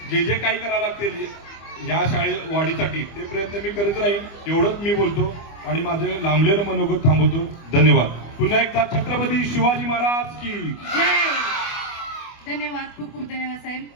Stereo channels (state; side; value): late; right; 25 ms